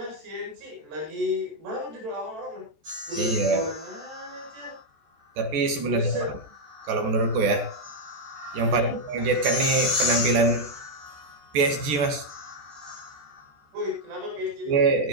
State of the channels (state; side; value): late; left; 14 ms